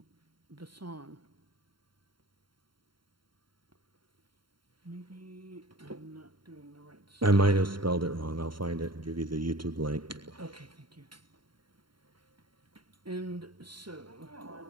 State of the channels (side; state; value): left; late; 0.73 ms